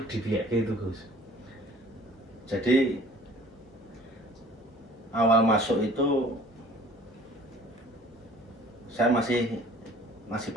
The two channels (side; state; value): both; normal; correlation 0.50